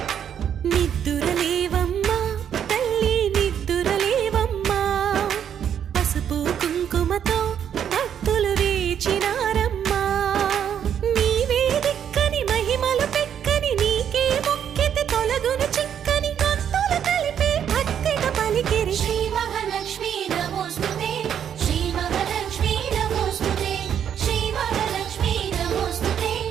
నిద్దురలేవమ్మా తల్లి నిద్దురలేవమ్మా పసుపు కుంకుమతో భక్తులు వేచినారమ్మా నీవే దిక్కని మహిమలు పెక్కని నీకే మొక్కితే తొలగును చిక్కని భక్తులు కలిపే భక్తిగా పలికిరి శ్రీ మహాలక్ష్మీ నమోస్తుతే శ్రీ మహాలక్ష్మీ నమోస్తుతే శ్రీ మహాలక్ష్మీ నమోస్తుతే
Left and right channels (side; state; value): left; quieter; 8.9 dB